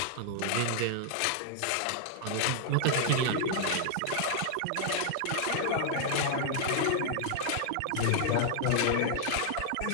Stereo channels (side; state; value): both; different; correlation -0.01